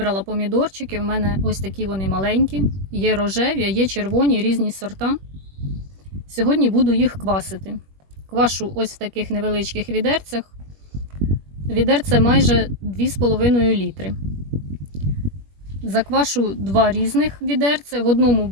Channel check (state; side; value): late; left; 21 ms